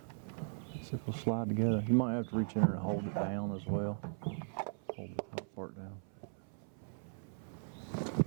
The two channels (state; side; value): silent; left; 52 dB below the other